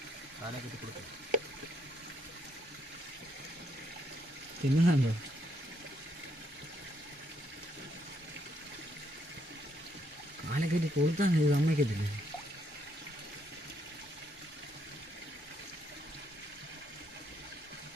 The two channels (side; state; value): both; normal; correlation 0.73